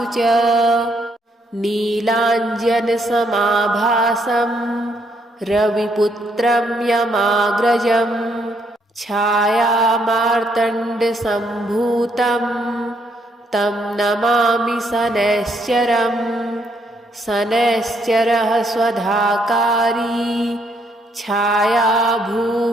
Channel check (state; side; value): normal; both; correlation 0.72